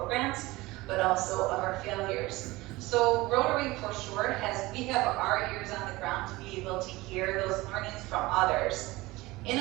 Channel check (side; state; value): left; quieter; 20.4 dB